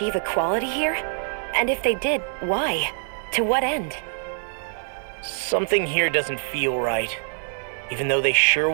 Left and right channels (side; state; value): left; silent; 62 dB below the other